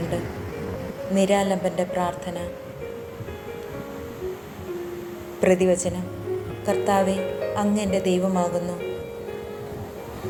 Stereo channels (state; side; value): identical; both; correlation 1.00